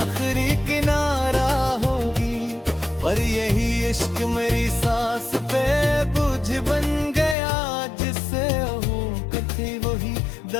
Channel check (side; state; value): right; drops out; at 7.4 s